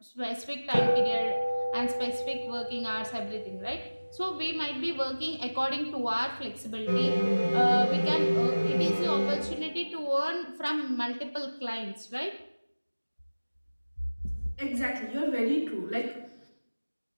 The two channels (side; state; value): both; inverted; correlation -1.00